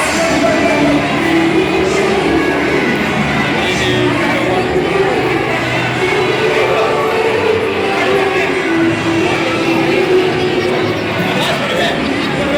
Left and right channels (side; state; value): both; identical; correlation 1.00